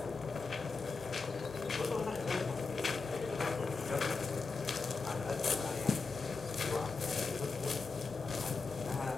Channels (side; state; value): right; quieter; 4.4 dB